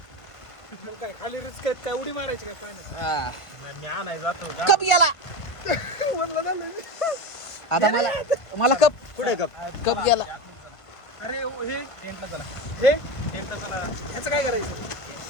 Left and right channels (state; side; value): late; right; 1.5 ms